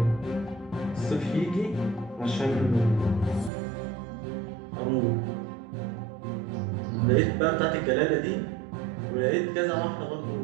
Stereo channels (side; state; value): left; drops out; at 3.5 s